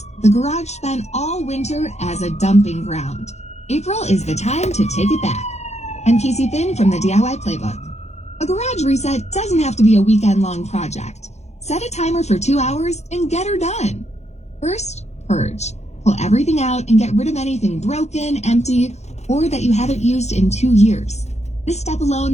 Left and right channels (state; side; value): late; right; 0.32 ms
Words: the garage spent all winter as a dumping ground. April is the time to take it back. I'm Casey Finn from the DIY Playbook. A garage reset doesn't have to be a weekend-long project. Set a timer for 2 hours and get her done. First, purge. Pull everything out and get rid of anything broken, empty, or that you haven't used in 2 years. This step